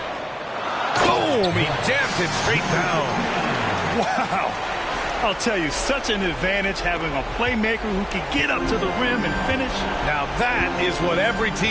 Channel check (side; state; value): both; identical; correlation 1.00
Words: Boom! He jammed it straight down. Wow. I'll tell you, such an advantage having a playmaker who can get up to the rim and finish. Now that is what every